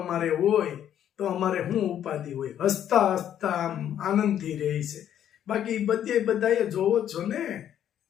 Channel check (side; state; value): right; quieter; 10.2 dB